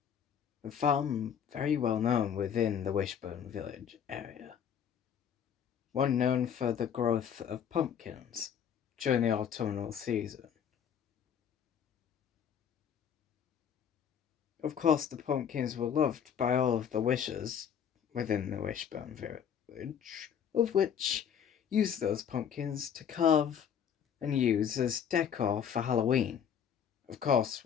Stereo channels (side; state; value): right; quieter; 8.2 dB